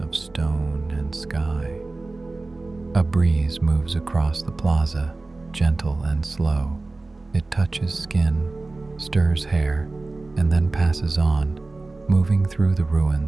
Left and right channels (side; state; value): left; quieter; 3.3 dB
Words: stone and sky. A breeze moves across the plaza, gentle and slow. It touches skin, stirs hair, and then passes on, moving through the